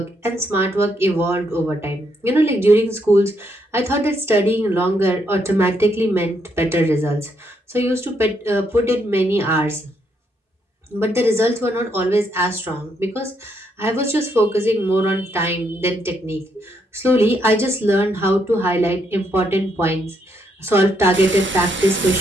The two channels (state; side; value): normal; both; correlation 0.76